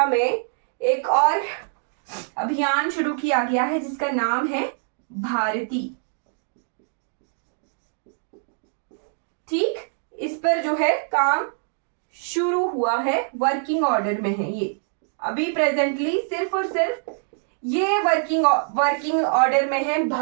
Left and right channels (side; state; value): left; silent; digital silence